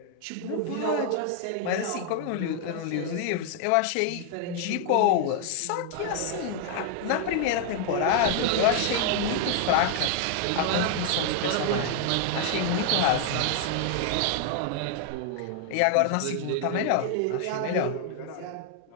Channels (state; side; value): different; both; correlation 0.00